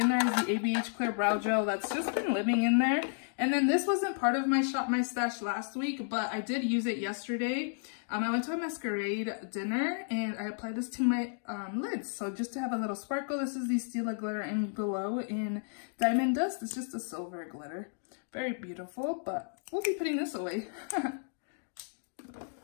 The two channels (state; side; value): silent; right; digital silence